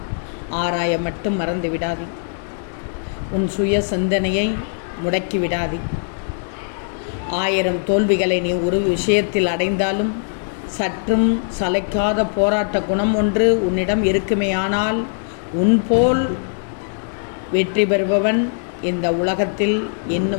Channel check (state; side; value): silent; right; digital silence